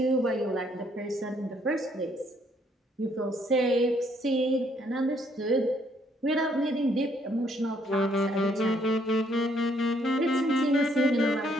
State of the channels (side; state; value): both; normal; correlation 0.68